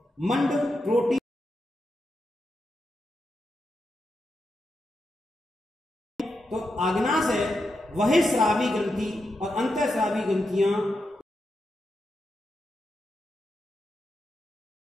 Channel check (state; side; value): normal; both; correlation 0.86